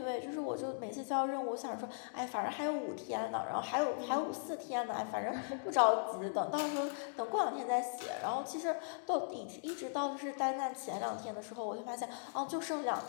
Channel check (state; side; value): silent; right; digital silence